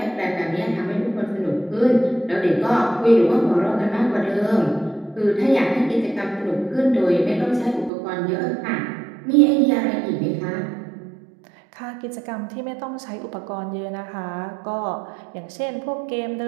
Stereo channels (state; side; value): drops out; left; at 7.9 s